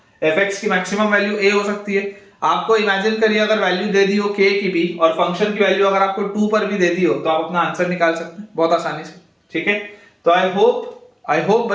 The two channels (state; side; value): identical; both; correlation 1.00